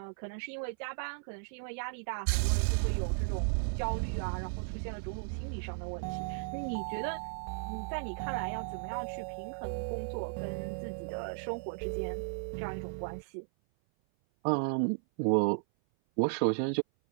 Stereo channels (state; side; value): silent; left; 54 dB below the other